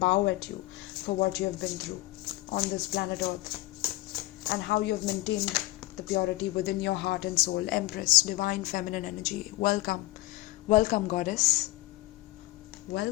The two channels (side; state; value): right; quieter; 18.8 dB